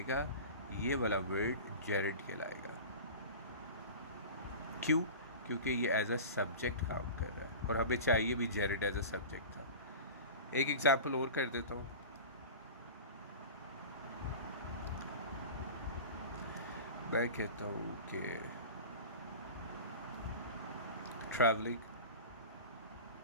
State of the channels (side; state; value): both; inverted; correlation -0.33